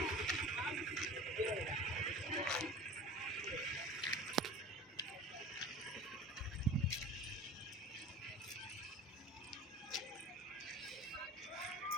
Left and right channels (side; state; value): both; normal; correlation 0.38